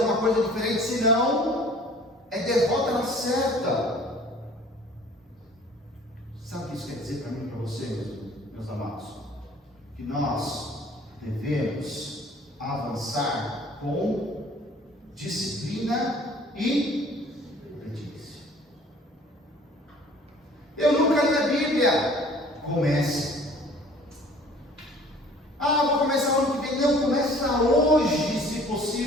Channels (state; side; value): normal; both; correlation 0.51